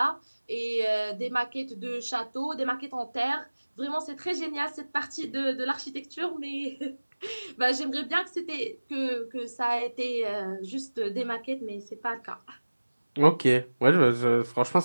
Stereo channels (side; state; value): both; inverted; correlation -1.00